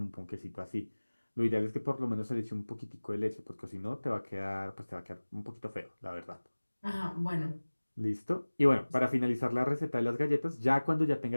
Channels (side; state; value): both; inverted; correlation -1.00